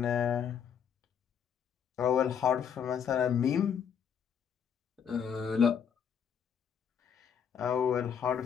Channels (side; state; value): right; quieter; 7.7 dB